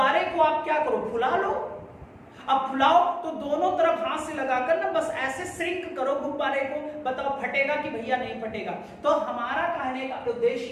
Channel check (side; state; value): both; identical; correlation 1.00